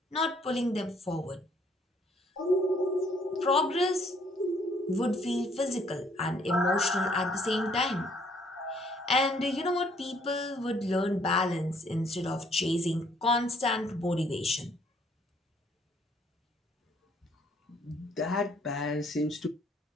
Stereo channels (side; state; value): both; normal; correlation 0.64